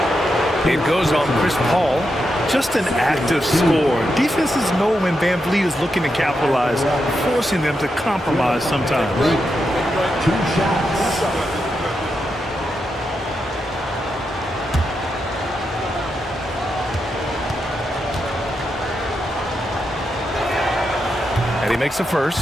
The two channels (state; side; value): normal; both; correlation 0.85